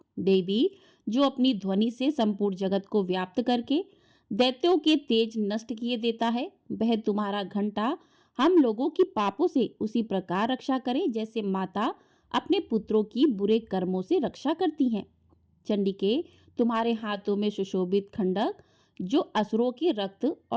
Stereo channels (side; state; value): both; identical; correlation 1.00